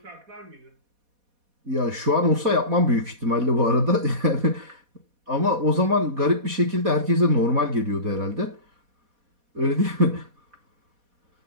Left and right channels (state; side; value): late; left; 4.1 ms